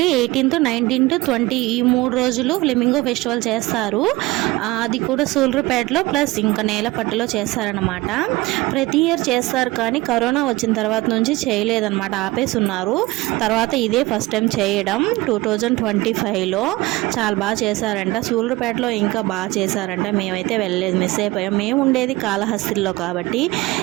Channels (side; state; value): left; quieter; 20.3 dB